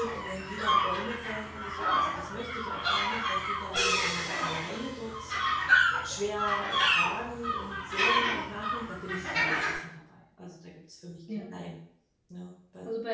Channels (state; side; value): identical; both; correlation 1.00